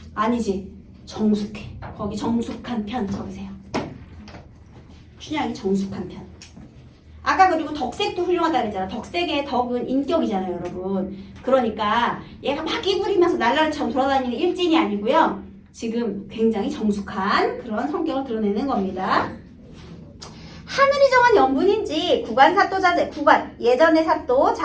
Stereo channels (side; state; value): both; identical; correlation 1.00